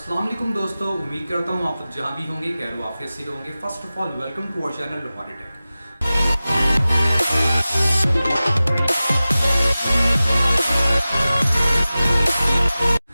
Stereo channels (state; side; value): inverted; both; correlation -0.96